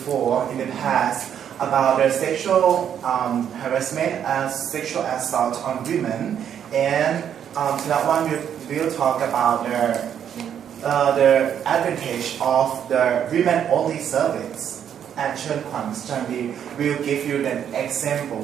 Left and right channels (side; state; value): left; quieter; 9.0 dB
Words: in the past about the sexual harassment and sexual assault on women, and tonight one will talk about the advantage of the women only service. And Chen Kwan Sandi will give you an